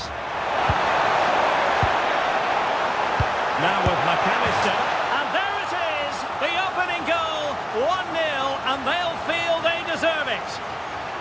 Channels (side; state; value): both; identical; correlation 1.00